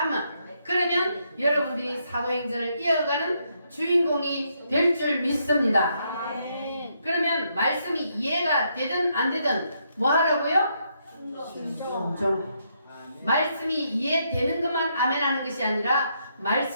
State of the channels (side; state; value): both; inverted; correlation -0.76